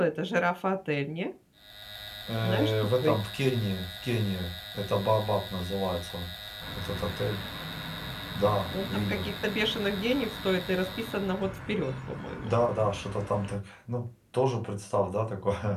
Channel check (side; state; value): both; identical; correlation 1.00